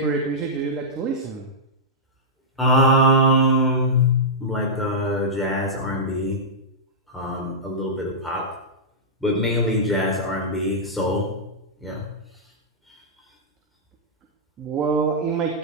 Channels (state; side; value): normal; both; correlation -0.11